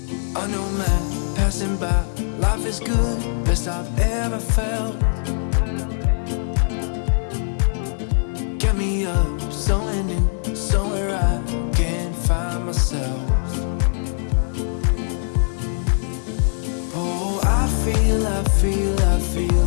A new man passing by. Life is good, best I've ever felt. Get me up, somewhere new, somewhere I can find myself. Oh, I feel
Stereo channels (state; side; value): silent; right; digital silence